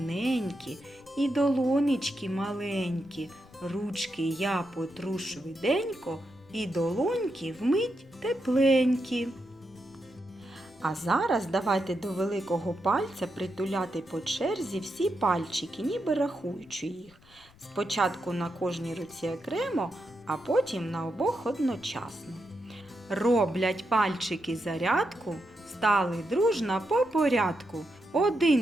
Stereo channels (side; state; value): left; noise; rumble, 27 dB below the sound